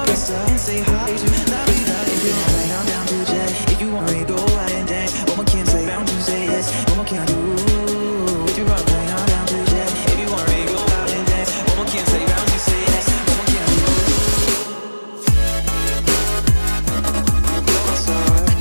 and say hi to la vida. If you want right, I'm down to jet. If you want me, go out and dance. What more can I say, bound to say yes. What more can I do? If you want right, I'm down to jet. If you want me, go out and dance. What more can I say, bound to say yes. What more can I do?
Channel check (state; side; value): inverted; both; correlation -1.00